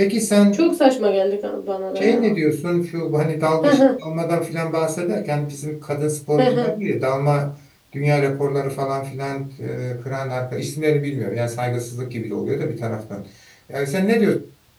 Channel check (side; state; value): both; identical; correlation 1.00